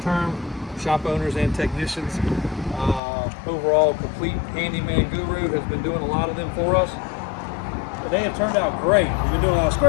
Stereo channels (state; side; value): drops out; right; at 3.0 s